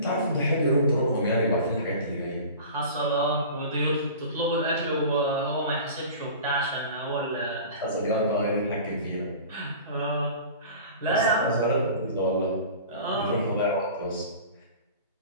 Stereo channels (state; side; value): inverted; both; correlation -0.39